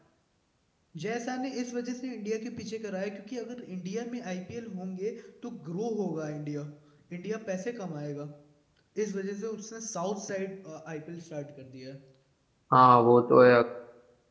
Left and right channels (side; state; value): both; identical; correlation 1.00